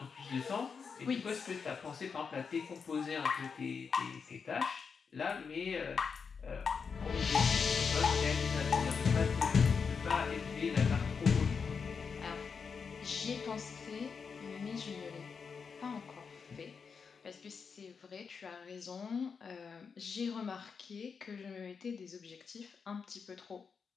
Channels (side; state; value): right; quieter; 5.7 dB